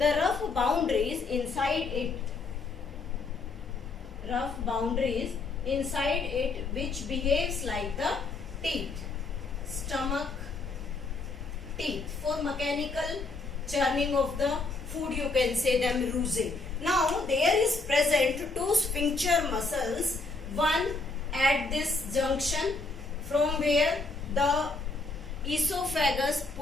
rough boundaries inside it, which behaves like the teeth. Stomach teeth. For mechanical churning of the food you can say them rusing. Now there is present two sphincter muscles, one at this junction from where the esophagus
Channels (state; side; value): quieter; right; 3.7 dB